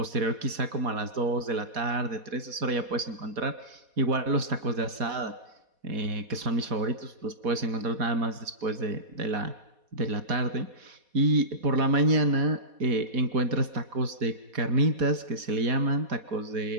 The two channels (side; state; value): left; late; 4.2 ms